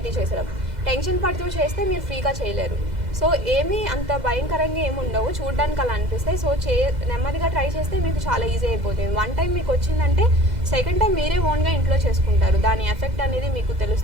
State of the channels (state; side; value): late; left; 2.0 ms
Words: చేసేటప్పుడు. టెన్షన్ పడుతూ చేస్తే మీరు ఫ్రీగా చేయలేరు. సో ఏమీ అంత భయంకరంగా ఏమి ఉండవు, చూడడానికి అలా అనిపిస్తాయి. సో నెమ్మదిగా ట్రై చేస్తే మీకు చాలా ఈజీ అయిపోతుంది. 1 టైం మీకు వచ్చిందంటే సెకండ్ టైం మీరే ఓన్గా ఇంట్లో చేసుకుంటారు. దాని ఎఫెక్ట్ అనేది మీకు